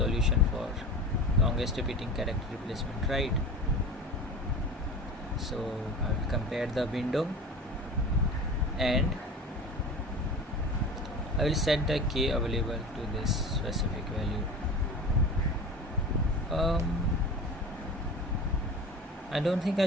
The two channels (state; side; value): normal; both; correlation 0.33